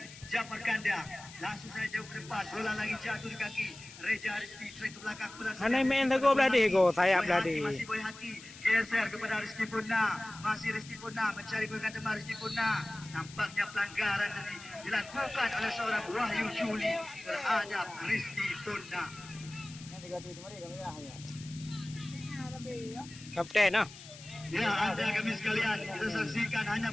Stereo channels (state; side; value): noise; left; hiss, 17 dB below the sound